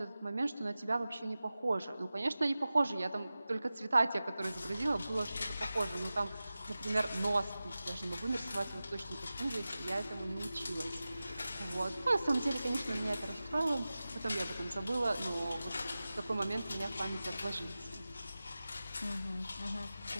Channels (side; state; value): both; inverted; correlation -0.95